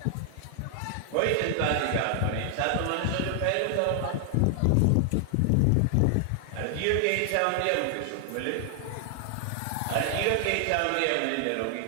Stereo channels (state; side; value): different; both; correlation 0.00